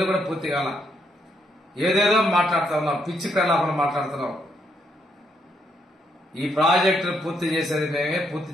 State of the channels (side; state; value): both; normal; correlation 0.76